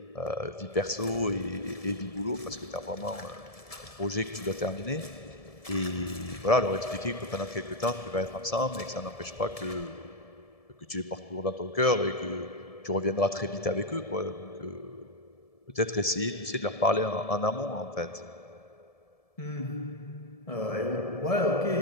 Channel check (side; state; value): right; late; 1.7 ms